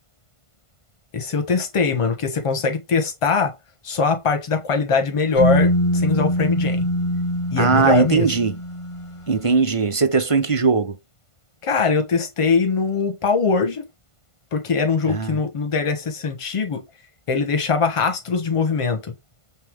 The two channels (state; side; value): late; right; 1.5 ms